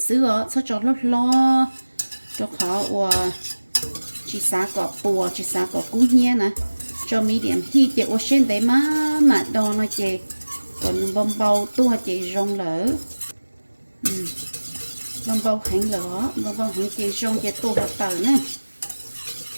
sao cho lúc lo cho khó và chỉ xả có bùa chỉ xả có cú nhé nè cho medium khi chị ở trên đấy mà đo nó chị còn bông bầu tua chị rong lỡ bông bầu hành lỡ bông bầu hành chị rong chị tua vào tờ nè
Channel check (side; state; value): both; inverted; correlation -1.00